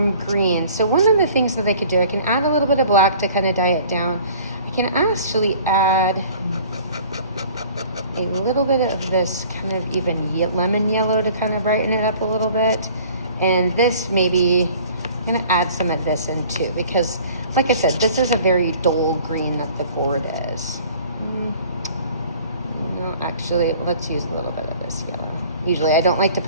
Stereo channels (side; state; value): both; inverted; correlation -0.50